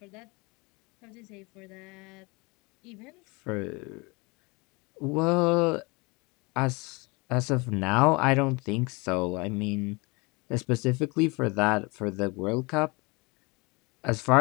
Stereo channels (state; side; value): quieter; right; 27.2 dB